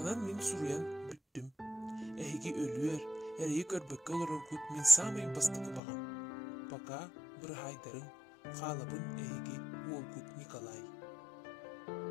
min suruyan büttüm. Ehigi ölüer, eriyi körbökke olurur kut min samayın bastıkı bağım. Baka bir haydarın, qalabın ehigi Volkut Nikolay.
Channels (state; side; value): drops out; right; at 5.8 s